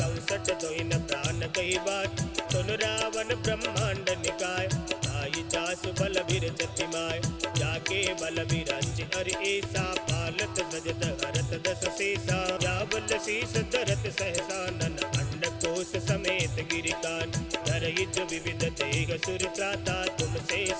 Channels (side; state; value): both; identical; correlation 1.00